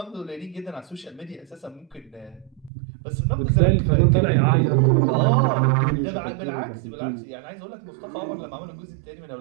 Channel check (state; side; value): drops out; left; at 2.7 s